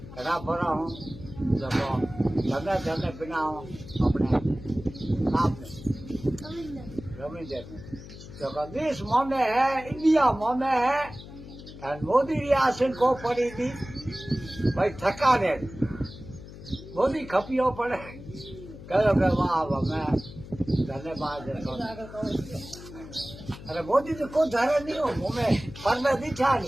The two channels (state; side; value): noise; left; hum, 15 dB below the sound